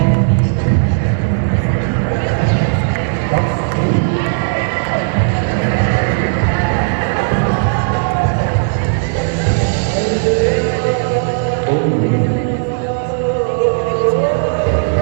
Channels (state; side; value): silent; left; digital silence